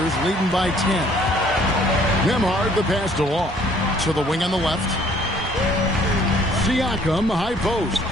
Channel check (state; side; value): normal; both; correlation 0.59